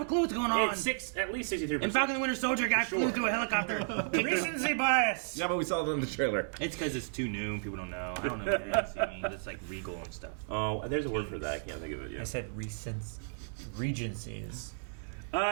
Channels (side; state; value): left; silent; digital silence